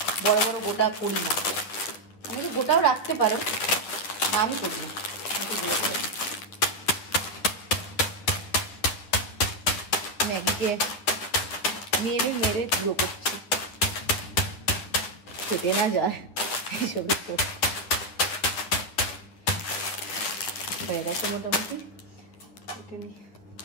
বড় বড় গোটা করি না। আমি গোটাও রাখতে পারো, আমি করি না, একটু গুঁড়ো করে ম্যাগিকে মেরে মেরে গুঁড়ো করছি, খেতে না যায় এইসব। হয়ে গেছে মোটামুটি।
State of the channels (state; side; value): late; right; 9.7 ms